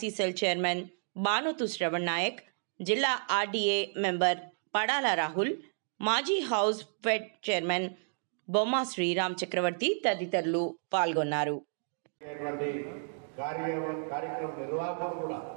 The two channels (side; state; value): left; silent; digital silence